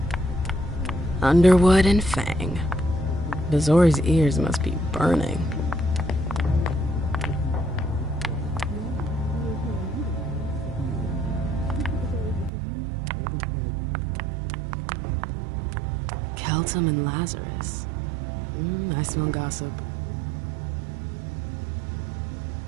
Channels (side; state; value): left; drops out; at 12.5 s